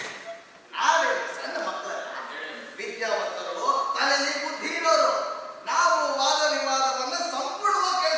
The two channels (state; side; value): identical; both; correlation 1.00